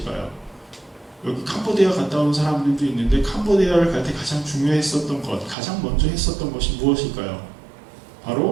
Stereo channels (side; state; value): left; drops out; at 5.6 s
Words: 여기 캄보디아 갔다 온 사람들도 있는데 캄보디아를 갈 때 가장 중요했었던 것, 가장 먼저 했었던 것이 무엇일까요?